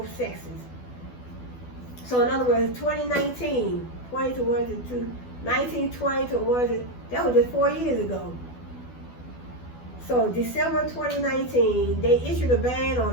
sexes. So in other words, 2019, 20 to 1 to 2, 19, 20 to 1 to, that was just 4 years ago. So December 2019, they issued a ban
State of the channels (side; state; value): right; late; 12 ms